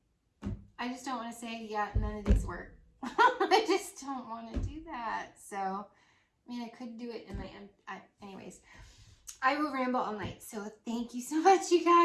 just don't want to say, yeah, none of these work. I just don't want to do that. So, I mean, I could do it in my, anyways. I will ramble all night. So thank you so much, you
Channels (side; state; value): both; identical; correlation 1.00